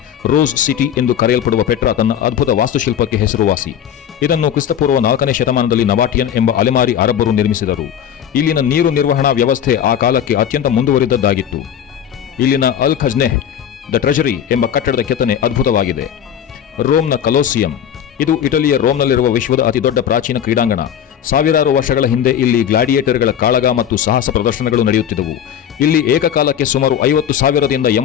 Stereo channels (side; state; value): right; quieter; 9.4 dB